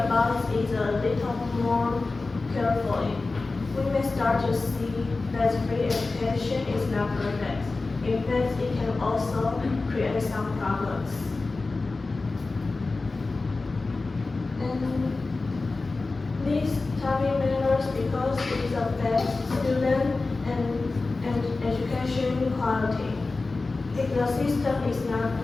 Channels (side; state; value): right; quieter; 3.6 dB